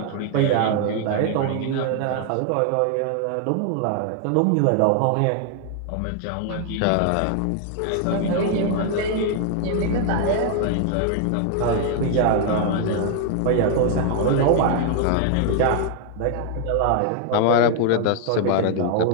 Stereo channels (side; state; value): both; different; correlation 0.00